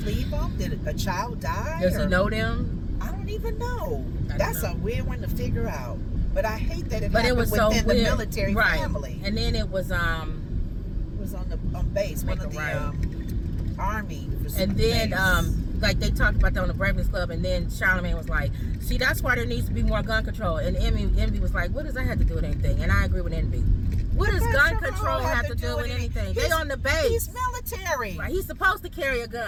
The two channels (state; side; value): identical; both; correlation 1.00